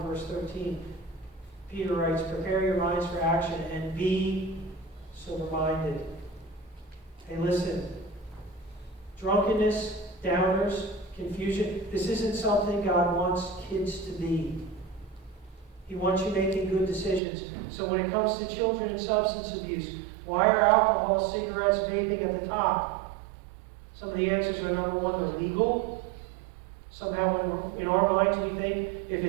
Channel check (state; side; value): drops out; left; at 17.2 s